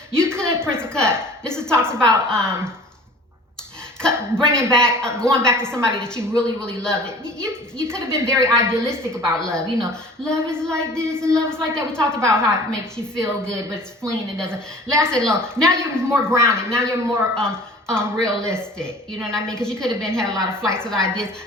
You could, Prince of Cups. This talks about, going back to somebody that you really, really loved. You could have been very idealistic about love. Love is like this and love is like that. We talked about how it makes you feel good, but it's fleeting. It doesn't last that long. Now you're more grounded. Now you're more realistic. You know what I mean? Because you could have had a lot of flights of ideas.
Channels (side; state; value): both; normal; correlation 0.45